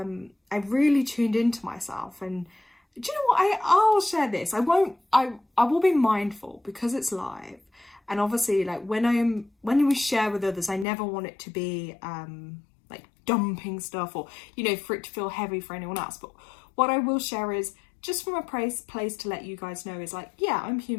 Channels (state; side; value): drops out; right; at 10.9 s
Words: I really tuned into myself. And do you know what? I'll share this. I will be mindful, because it's live, and obviously, like, when we share with others, I never want it to be like dumping stuff, or, you know, for it to feel heavy for anyone else. But what I will share is just from a place to let you guys know is like, yeah, I'm